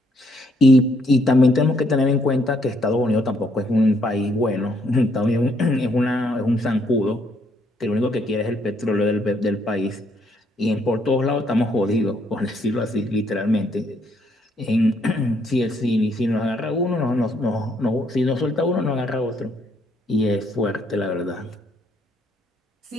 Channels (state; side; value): normal; both; correlation 0.70